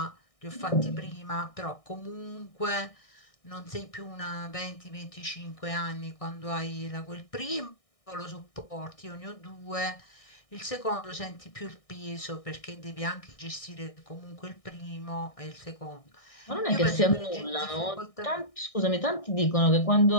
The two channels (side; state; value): right; late; 1.6 ms